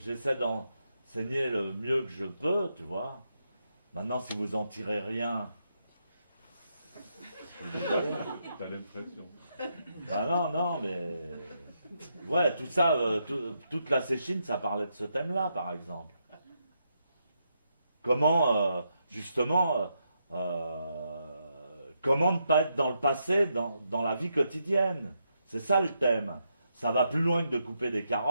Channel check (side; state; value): both; inverted; correlation -0.81